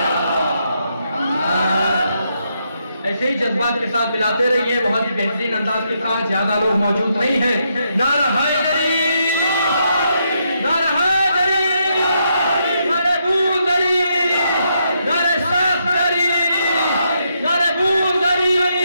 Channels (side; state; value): both; inverted; correlation -0.78